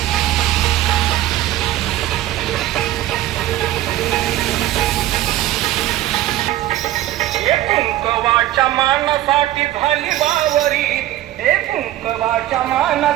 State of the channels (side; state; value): left; quieter; 14.4 dB